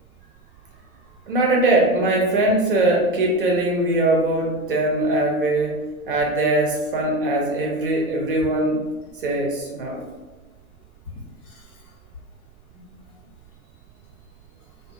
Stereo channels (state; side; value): noise; right; rumble, 29 dB below the sound